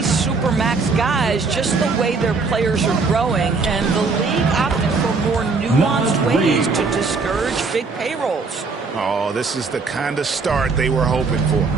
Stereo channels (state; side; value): quieter; left; 4.3 dB